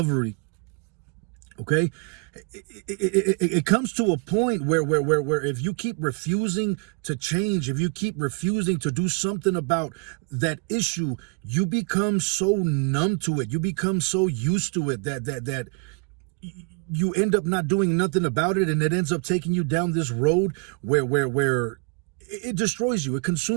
Okay? It comes to a point where if you keep refusing to change, if you keep refusing to do something about that issue, you become so numb to it. You become so used to it that you end up not doing nothing about it, and it ends up taking you down this road where it destroys you. It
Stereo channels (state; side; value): quieter; left; 35.9 dB